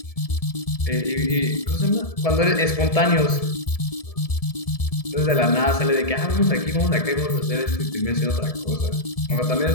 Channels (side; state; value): right; late; 1.7 ms